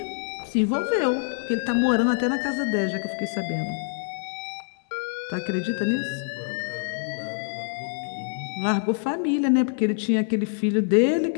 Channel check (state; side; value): silent; right; digital silence